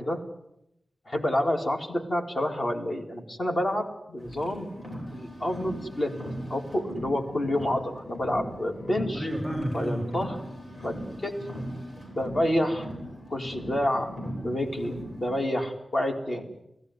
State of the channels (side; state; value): both; normal; correlation 0.92